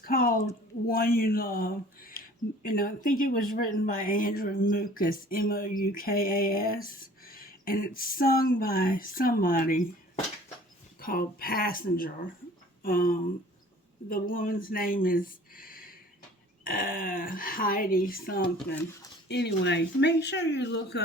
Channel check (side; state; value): both; normal; correlation 0.50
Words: One You Love. And I think it was written by Andrew Mukas, Moukas. And it's sung by somebody called Passenger. The woman's name is Heidi something. Anyway, make sure you look